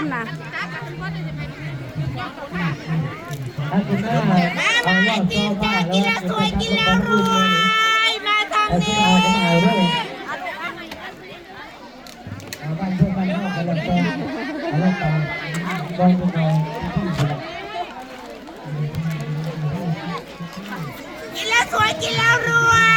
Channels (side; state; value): both; identical; correlation 1.00